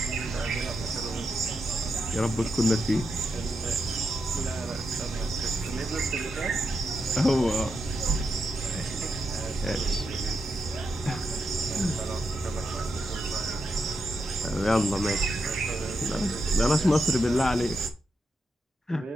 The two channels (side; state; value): both; normal; correlation 0.84